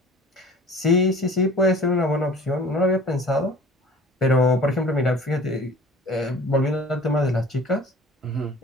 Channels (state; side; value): normal; both; correlation 0.46